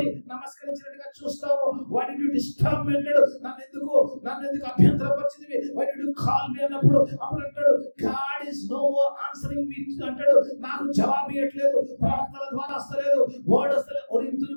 నమస్కరించినట్టుగా చూస్తావు. why did you disturb me అంటాడు, నన్ను ఎందుకు అభ్యంతరపరిచింది, why did you call me అన్నప్పుడు అప్పుడు అంటాడు God is no more answering me అంటాడు, నాకు జవాబు ఇవ్వట్లేదు, ప్రవక్తల ద్వారా వస్తలేదు, వర్డ్ వస్తలేదు,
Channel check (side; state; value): both; inverted; correlation -1.00